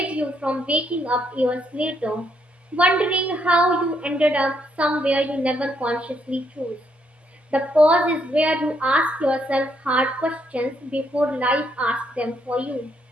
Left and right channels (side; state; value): both; normal; correlation 0.74